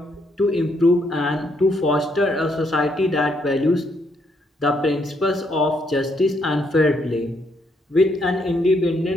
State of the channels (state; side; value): normal; both; correlation 0.74